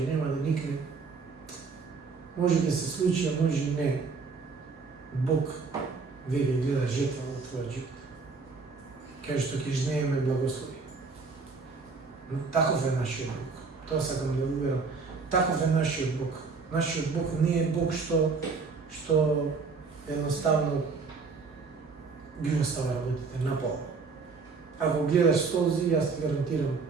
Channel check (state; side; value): quieter; left; 4.7 dB